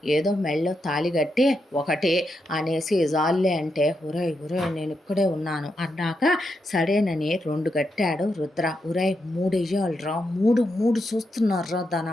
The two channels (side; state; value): both; normal; correlation 0.84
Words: ఏదో మెళ్ళో తాళిగట్టి ఒకటి అనేసి జాల్లే అంటే, ఉరై నేను ఇక్కడే ఉన్నాను అన్నాక సరేనని 2 కట్టాడు రుద్ర. ఉరై 3 వెయ్యాలిరా, మూడు చూస్తున్నారా